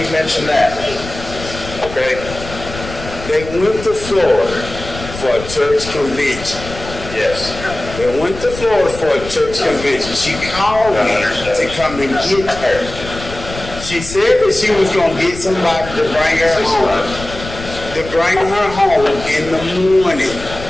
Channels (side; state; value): left; noise; rumble, 12 dB below the sound